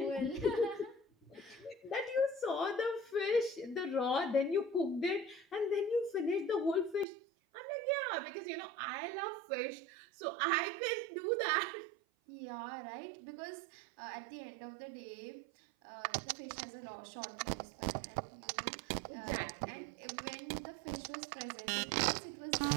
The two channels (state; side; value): drops out; left; at 7.1 s